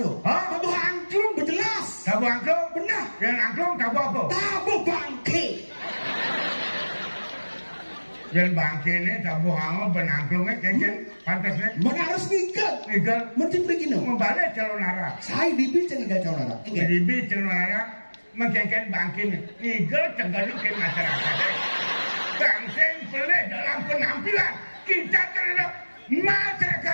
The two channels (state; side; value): inverted; both; correlation -1.00